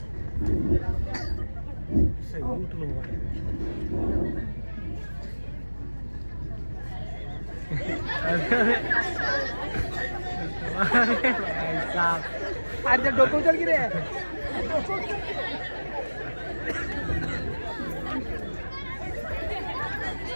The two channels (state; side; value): inverted; both; correlation -1.00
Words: अरे डोकं उचल की रे.